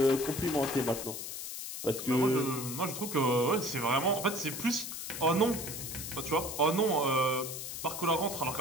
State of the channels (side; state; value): left; noise; hiss, 7 dB below the sound